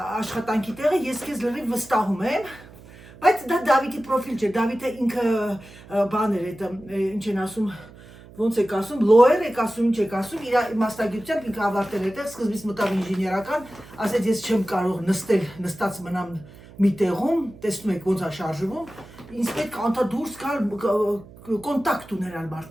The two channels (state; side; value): noise; right; hum, 20 dB below the sound